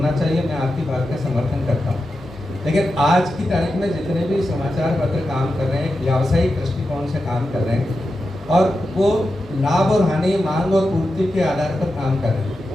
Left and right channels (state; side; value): normal; both; correlation 0.90